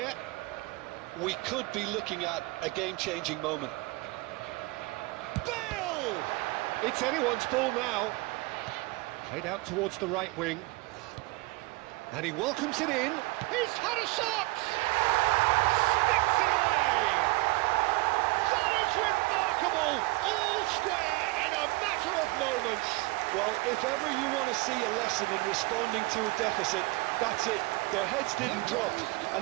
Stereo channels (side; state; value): left; quieter; 23.3 dB